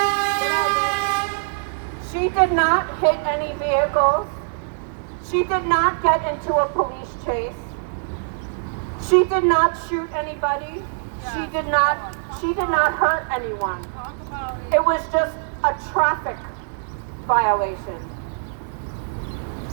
She did not hit any vehicles. She did not get into a police chase. She did not shoot anybody. She did not hurt anyone. It was just a traffic violation.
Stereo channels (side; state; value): left; silent; 59 dB below the other